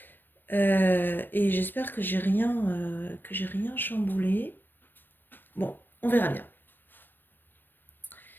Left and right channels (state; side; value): late; right; 0.094 ms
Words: et j'espère que j'ai rien chamboulé. Bon, on verra bien.